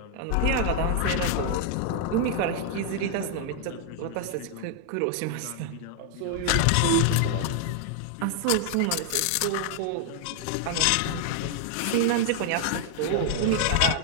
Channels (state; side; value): different; both; correlation 0.00